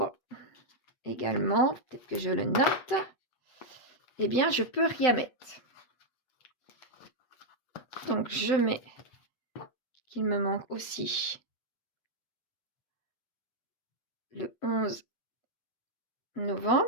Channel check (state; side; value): late; right; 8.3 ms